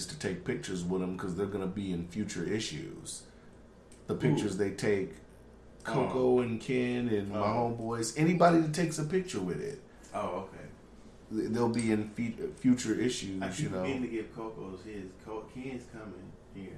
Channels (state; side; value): identical; both; correlation 1.00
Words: to take pictures with them because they're gonna be in future issues. The pictures they take, Coco and Ken and my homeboys, anybody that takes a picture with it, Oh, okay. they'll be in future issues. I You keep know. meaning to give Coco's his. Ken's coming here,